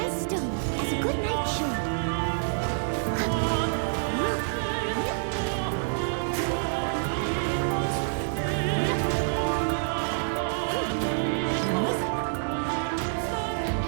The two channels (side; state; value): left; silent; digital silence